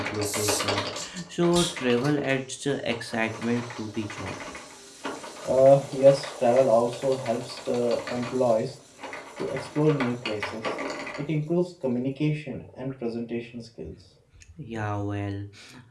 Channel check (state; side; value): identical; both; correlation 1.00